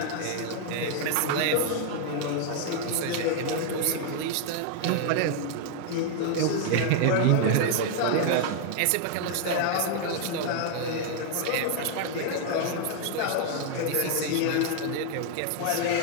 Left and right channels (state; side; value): different; both; correlation 0.00